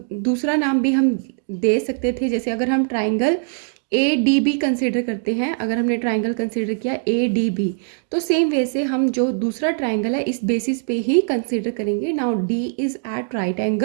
दूसरा नाम भी हम दे सकते थे, जैसे अगर हम triangle A D B consider करते हैं, अगर हमने ट्राइंगल कंसिडर किया ए डी बी, तो सेम वैसे हम जो दूसरा ट्राइंगल है इस बेसिस पे ही कंसिडर करेंगे। Now D is at right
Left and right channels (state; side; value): silent; left; digital silence